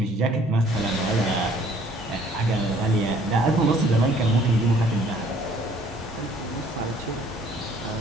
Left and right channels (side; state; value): both; normal; correlation 0.59